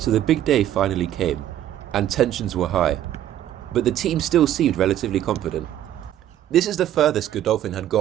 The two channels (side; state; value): left; quieter; 11.8 dB